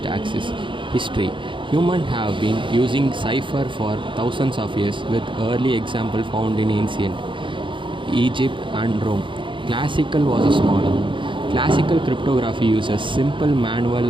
access. History. Humans have been using cipher for thousands of years, with early example found in ancient Egypt and Rome. Classical versus modern. Classical cryptography uses simple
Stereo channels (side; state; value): left; late; 0.24 ms